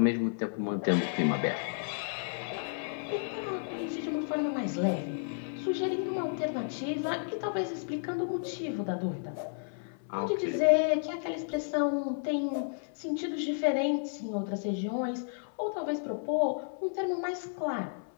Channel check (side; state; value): right; silent; 56 dB below the other